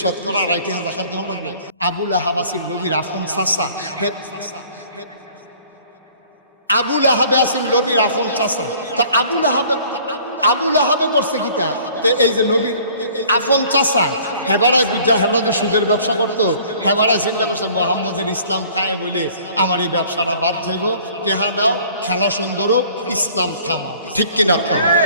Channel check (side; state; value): both; inverted; correlation -0.53